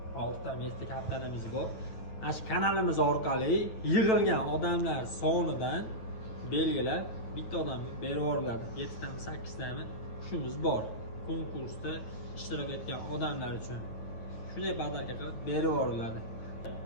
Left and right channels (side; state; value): right; late; 9.1 ms